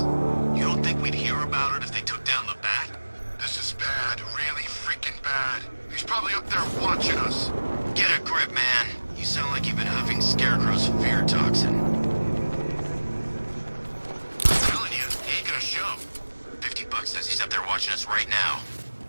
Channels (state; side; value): inverted; both; correlation -1.00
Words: You don't think we'd hear about it if they took down the Bat? This is bad. Really freaking bad. He's probably up there watching us. Get a grip, man. You sound like you've been huffing Scarecrow's fear toxin. I'm telling you, he ain't gonna show. $50 says he's up there watching us right now.